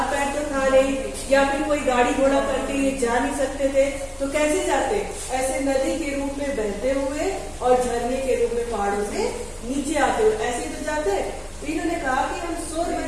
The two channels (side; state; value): both; identical; correlation 1.00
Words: पैर तो था नहीं या फिर कोई गाड़ी घोड़ा करके ये जा नहीं सकते थे, तो कैसे जाते? ऐसे नदी के रूप में बहते हुए और झरने के रूप में पहाड़ों से नीचे आते हुए ऐसे तो जाते। इन्होंने कहा कि हम शोर